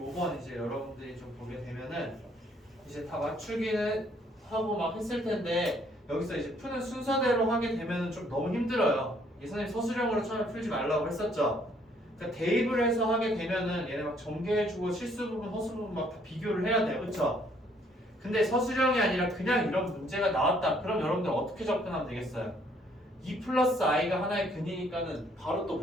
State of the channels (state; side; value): normal; both; correlation 0.65